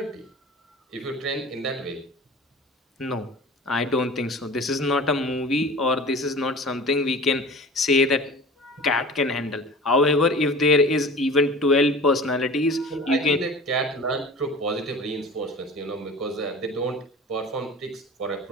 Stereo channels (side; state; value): both; normal; correlation 0.39